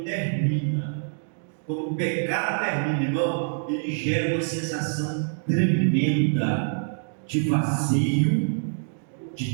termina, quando o pecado termina, irmão, ele gera uma sensação tremenda de vazio,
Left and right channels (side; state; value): left; silent; digital silence